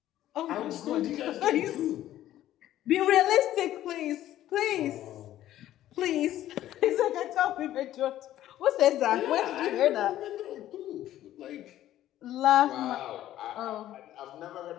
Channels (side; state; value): right; quieter; 13.1 dB